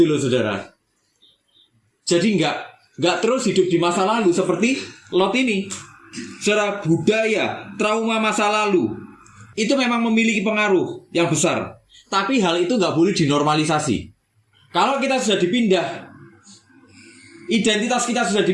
loh saudara. Jadi nggak terus hidup di masa lalu seperti Lot ini. Saudara, budaya, trauma masa lalu itu memang memiliki pengaruh yang besar. Tapi hal itu nggak boleh dinormalisasi. Kalau kita sudah dipindah, identitas kita sudah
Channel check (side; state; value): both; identical; correlation 1.00